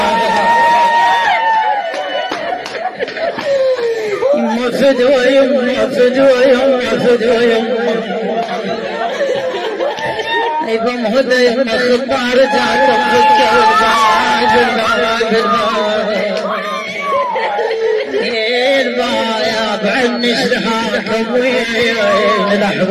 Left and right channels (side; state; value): both; identical; correlation 1.00